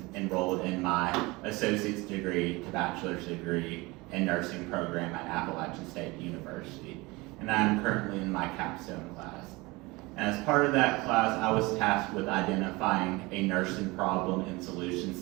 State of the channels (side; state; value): left; quieter; 23.2 dB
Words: enrolled in my associate's degree to bachelor's degree in nursing program at Appalachian State University. And I'm currently in my capstone class. And as part of that class, I was tasked with identifying a nursing problem and